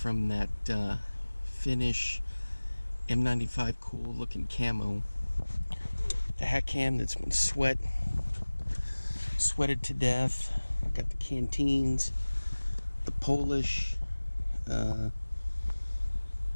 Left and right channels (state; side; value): inverted; both; correlation -1.00